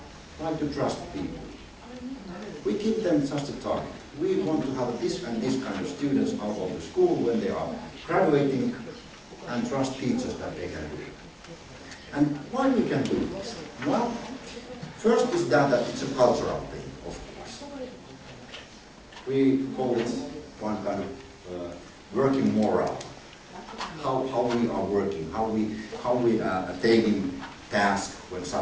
like to trust people. We give them just a target. We want to have this and this kind of students out of the school when they are graduating, and trust teachers that they can do it. And why we can do this? Well, first is that it's a cultural thing, of course. We call it one kind of working moral. How we are working, how we are taking tasks when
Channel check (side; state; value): both; identical; correlation 1.00